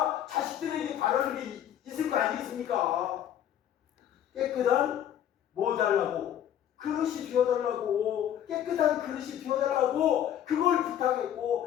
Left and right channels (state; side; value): quieter; right; 10.5 dB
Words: 자식들에게 바라는 게 있을 거 아니겠습니까? 깨끗한 뭐 달라고? 그릇이 비워달라고. 깨끗한 그릇이 비워달라고 그걸